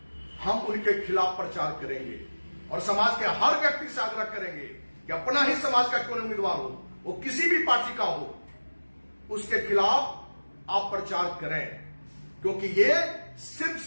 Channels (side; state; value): both; inverted; correlation -1.00